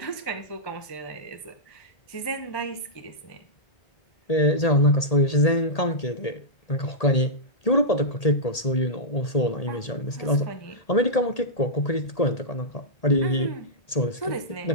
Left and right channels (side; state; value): right; late; 1.8 ms